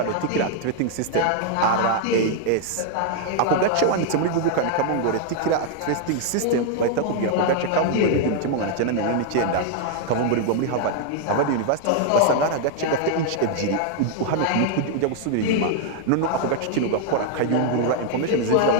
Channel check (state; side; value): different; both; correlation 0.00